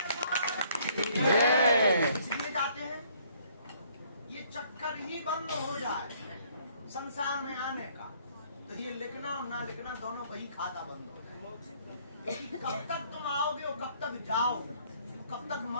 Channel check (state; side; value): inverted; both; correlation -0.63